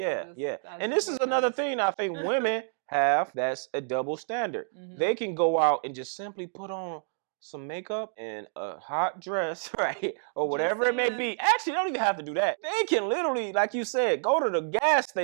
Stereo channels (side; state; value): left; silent; digital silence